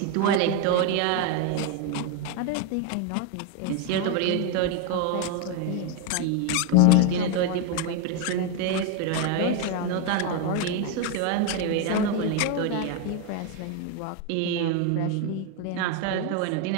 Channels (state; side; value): different; both; correlation 0.01